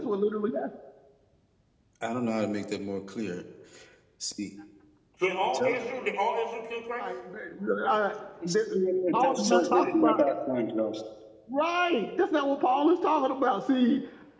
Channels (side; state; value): both; identical; correlation 1.00